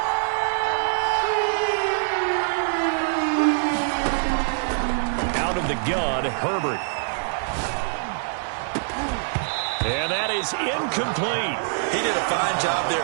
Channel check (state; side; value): silent; left; digital silence